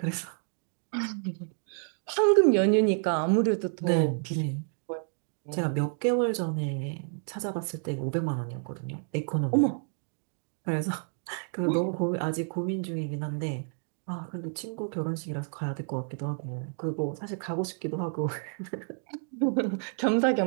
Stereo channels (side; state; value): left; silent; 58 dB below the other